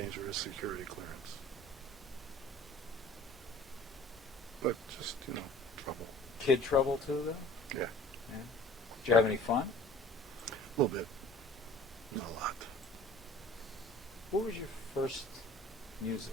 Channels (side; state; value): both; normal; correlation 0.48